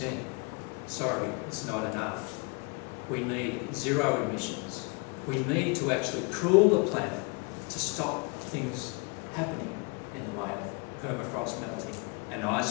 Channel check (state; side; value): quieter; right; 32.1 dB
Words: Sorry, it's not enough. We need zero emissions. We need to actually cool the planet to stop things happening in the way of permafrost melting and